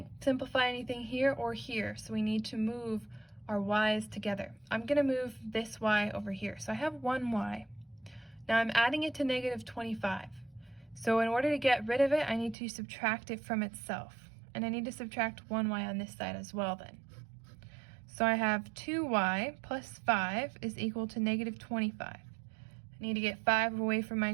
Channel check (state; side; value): drops out; left; at 12.6 s